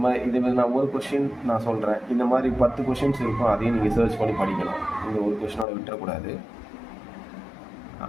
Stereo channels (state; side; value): drops out; right; at 5.7 s